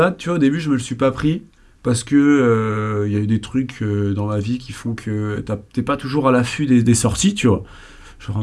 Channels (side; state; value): both; identical; correlation 1.00